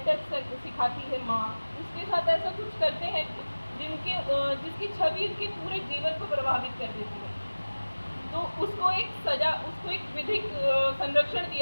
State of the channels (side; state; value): both; inverted; correlation -1.00